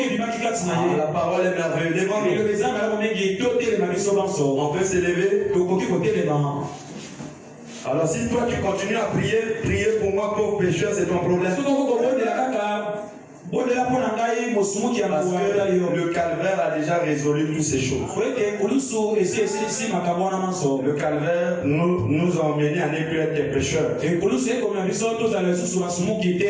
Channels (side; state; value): both; identical; correlation 1.00